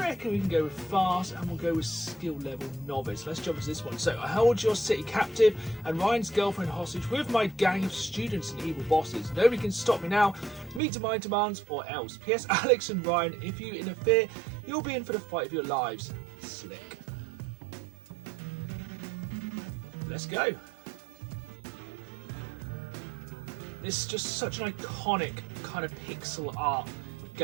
we can go with fast, and we'll go with skill level novice. Let's jump into this one. So, I hold your city captive and Ryan's girlfriend hostage with my gang of students and evil bosses. Nobody can stop me now. Meet to my demands or else. P.S. Alex and Ryan, if you interfere, you'll be in for the fight of your lives. Slick. Let's go. This is just such an iconic kind of pixel art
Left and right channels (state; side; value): drops out; left; at 10.8 s